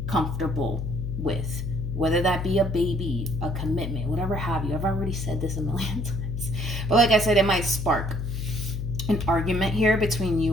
comfortable with, whether that be a baby, a commitment, whatever have you. I've already said this a million times, but like I said, it might spark an argument here between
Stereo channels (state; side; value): noise; left; hum, 4 dB below the sound